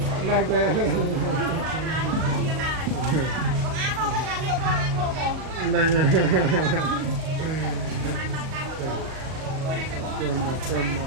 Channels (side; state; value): left; late; 38 ms